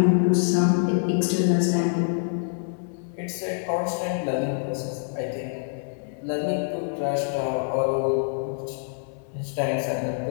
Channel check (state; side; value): silent; right; 61 dB below the other